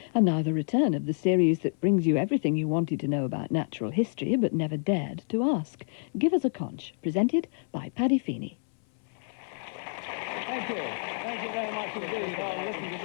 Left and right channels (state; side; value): silent; right; 59 dB below the other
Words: And now the return of the series that brings you everything you wanted to know about natural history but never dared to ask. Give Us A Conch, presented by Paddy Feeny. Thank you. Thank you very much indeed. Oh, listen to